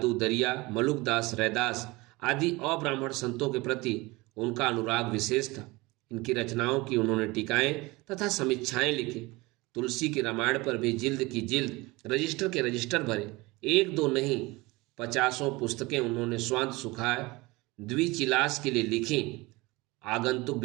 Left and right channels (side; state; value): left; quieter; 22.8 dB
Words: दरिया, मलुकदास, रैदास आदि अब्राह्मण संतों के प्रति उनका अनुराग विशेष था। इनकी रचनाओं की उन्होंने टीकाएं तथा समीक्षाएं लिखी। तुलसी की रामायण पर भी जिल्द की जिल्द, रजिस्टर के रजिस्टर भरे। एक दो नहीं, 50 पुस्तकें उन्होंने स्वांत सुखाए द्विचिलास के लिए लिखी। आगंतुक